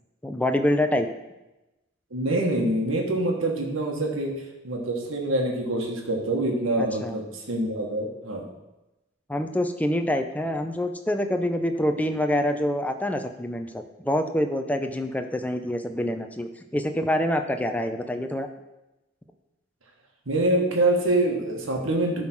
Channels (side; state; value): both; normal; correlation 0.45